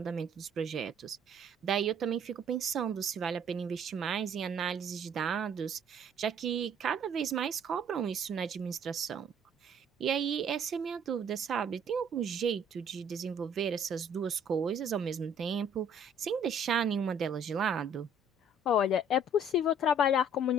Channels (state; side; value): normal; both; correlation 0.58